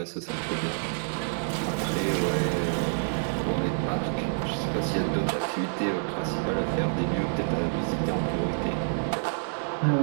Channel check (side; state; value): left; silent; 59 dB below the other